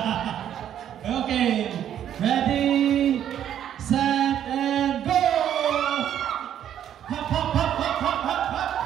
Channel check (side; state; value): left; quieter; 10.3 dB